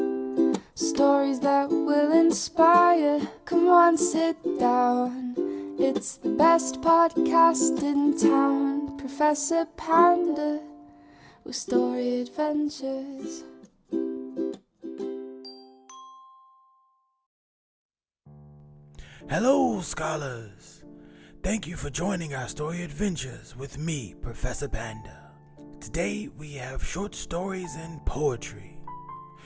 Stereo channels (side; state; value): both; identical; correlation 1.00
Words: Stories that will inspire. Come on, sit down. It's the best podcast in town. Professor Panda with story adventures. Hello, scholars! Thank you for joining our story adventures with me, Professor Panda. Today we have short stories and poetry.